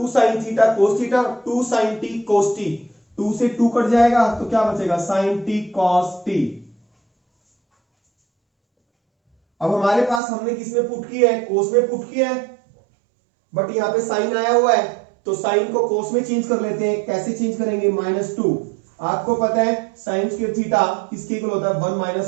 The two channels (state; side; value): drops out; left; at 10.2 s